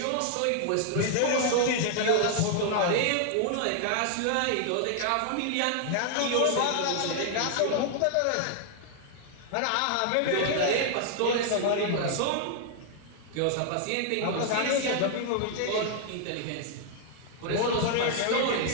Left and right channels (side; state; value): both; different; correlation 0.00